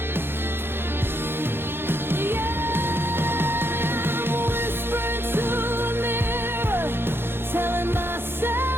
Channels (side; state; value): left; late; 0.11 ms